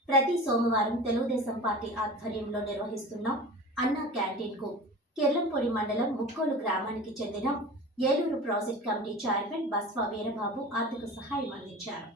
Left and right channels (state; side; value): normal; both; correlation 0.35